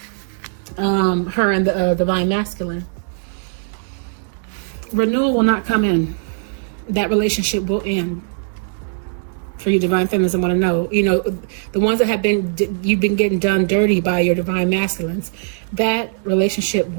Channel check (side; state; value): left; silent; digital silence